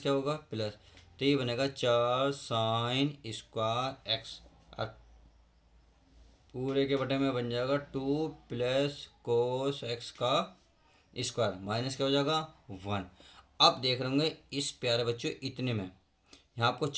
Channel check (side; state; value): both; identical; correlation 1.00